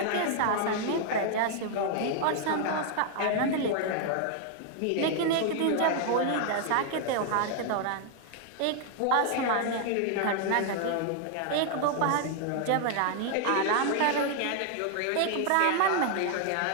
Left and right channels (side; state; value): both; different; correlation 0.00